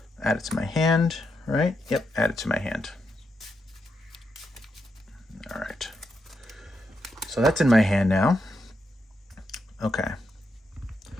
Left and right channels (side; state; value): both; normal; correlation 0.83